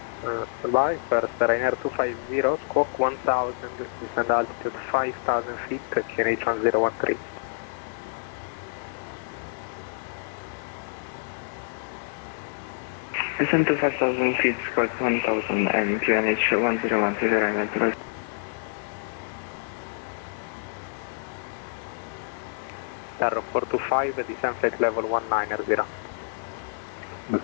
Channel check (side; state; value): right; silent; digital silence